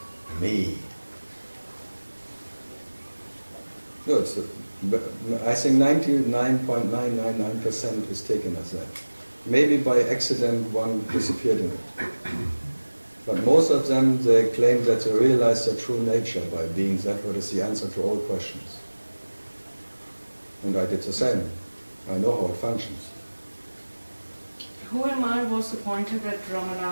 Me. No, I think 99.999% is taken as that. Maybe by accident one disappeared in it. But most of them, they claim that they realize their true nature by being that what is the answer to all questions. And I did the same. I know how it functions. Who am I was the pointer that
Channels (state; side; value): inverted; both; correlation -1.00